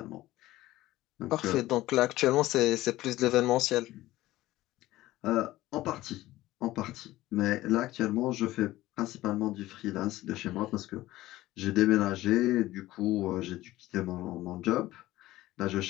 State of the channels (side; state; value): right; quieter; 16.5 dB